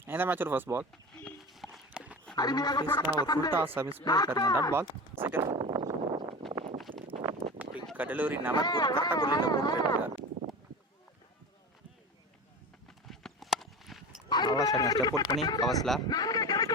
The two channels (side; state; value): both; normal; correlation 0.30